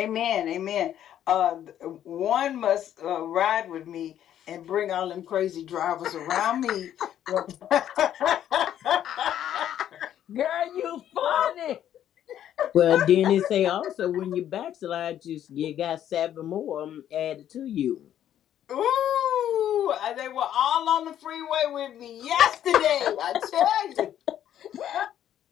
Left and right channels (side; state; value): right; quieter; 10.8 dB